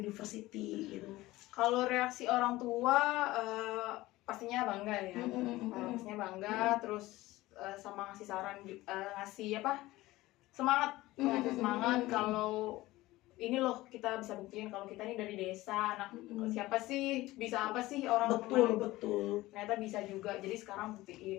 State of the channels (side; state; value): right; quieter; 18.2 dB